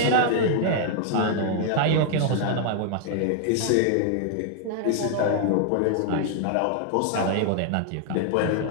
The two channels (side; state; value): both; different; correlation 0.00